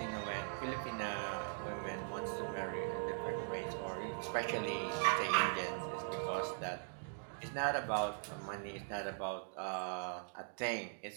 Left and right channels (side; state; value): left; silent; digital silence